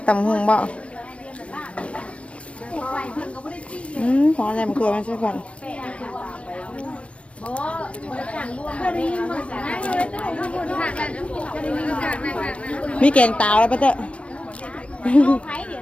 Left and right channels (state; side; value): late; right; 0.061 ms